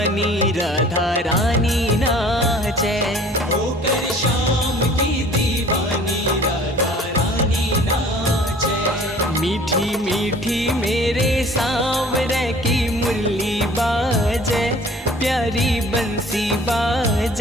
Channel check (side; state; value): both; normal; correlation 0.50